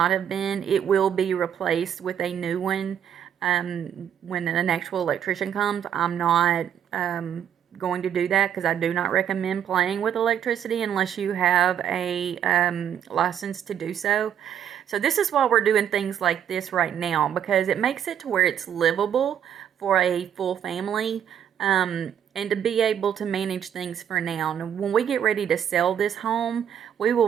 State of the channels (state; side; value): quieter; left; 9.2 dB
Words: have been. It will be replaced with a new one when an actual electrician comes. I'm not going to do that because I do not recommend playing with electricity unless you have a license to do so. So this is why we're doing things like this right now, because it makes it to where it's livable for a full family. And to be able to manage things for now. And when we get ready to sell this home, we